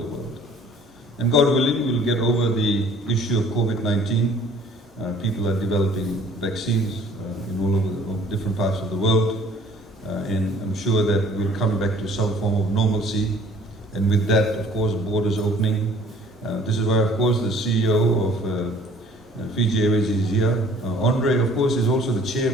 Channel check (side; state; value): both; normal; correlation 0.54